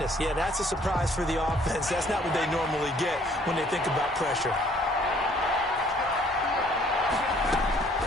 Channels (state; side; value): normal; both; correlation 0.60